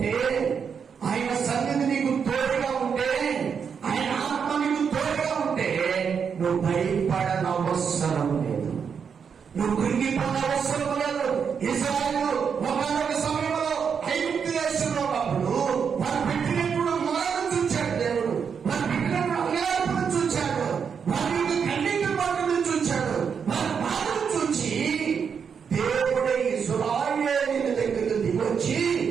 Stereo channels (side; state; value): left; quieter; 6.7 dB